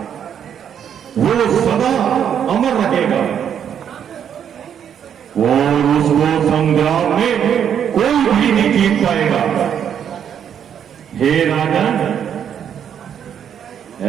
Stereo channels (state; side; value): quieter; left; 8.7 dB